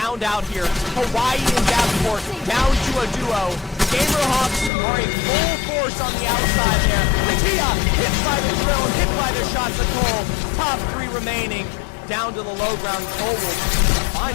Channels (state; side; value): drops out; right; at 4.7 s